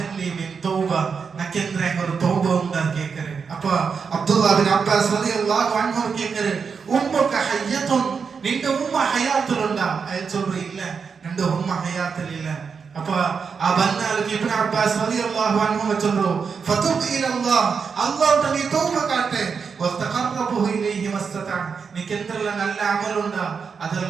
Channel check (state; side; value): quieter; left; 5.8 dB